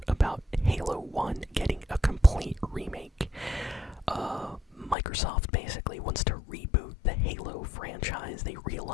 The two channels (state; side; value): drops out; right; at 5.0 s